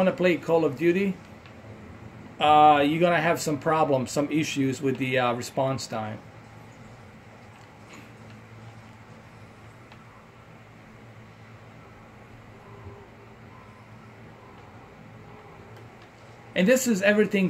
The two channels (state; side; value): identical; both; correlation 1.00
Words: to play Call of Duty, you're going to have some problems, some issues with the response time. And this is everything